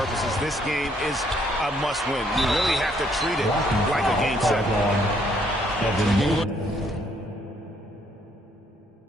this game is a must-win. You really have to treat it like a Game 7.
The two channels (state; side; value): normal; both; correlation 0.68